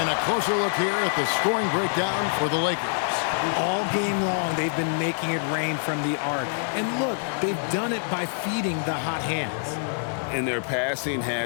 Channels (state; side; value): silent; right; digital silence